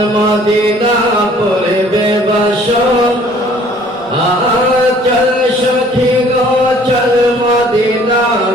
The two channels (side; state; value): both; normal; correlation 0.55